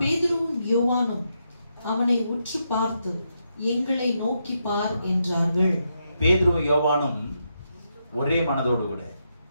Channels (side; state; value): both; inverted; correlation -0.82